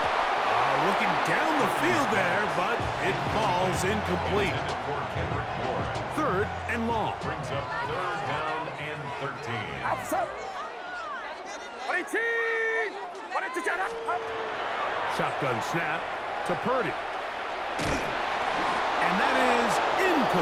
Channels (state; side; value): identical; both; correlation 1.00